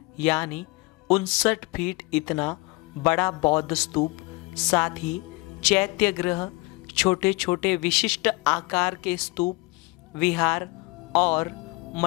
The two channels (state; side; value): quieter; right; 25.8 dB